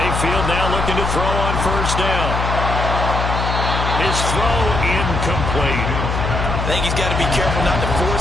now looking to throw on first down. His throw incomplete. I think he's got to be careful not to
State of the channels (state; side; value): noise; left; hum, 2 dB below the sound